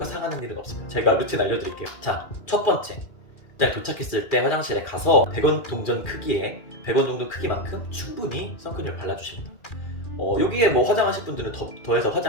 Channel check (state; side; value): late; right; 2.4 ms